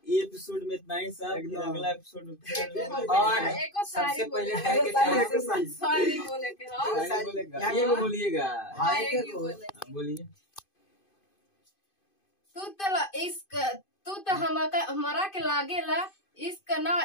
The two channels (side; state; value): right; late; 2.5 ms